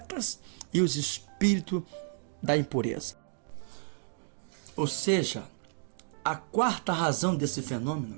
e os espíritos da impureza. Ou seja, a 4ª razão desse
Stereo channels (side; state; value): left; silent; 57 dB below the other